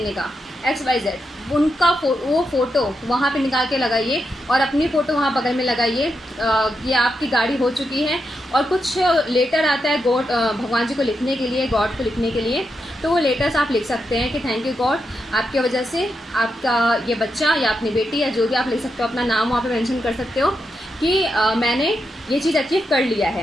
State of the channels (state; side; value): normal; both; correlation 0.85